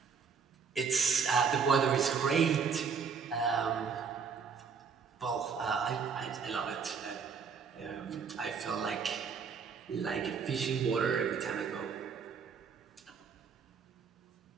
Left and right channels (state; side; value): quieter; left; 6.0 dB